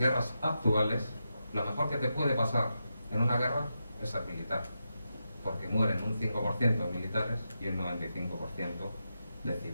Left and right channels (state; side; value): inverted; both; correlation -0.87